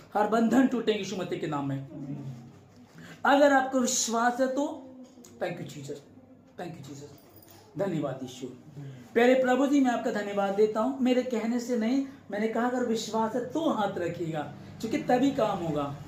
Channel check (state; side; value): identical; both; correlation 1.00